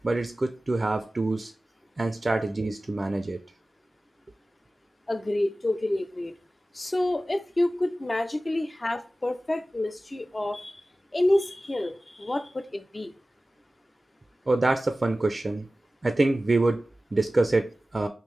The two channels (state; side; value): normal; both; correlation 0.96